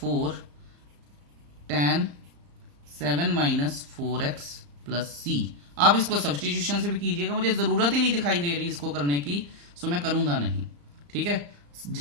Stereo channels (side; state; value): left; late; 35 ms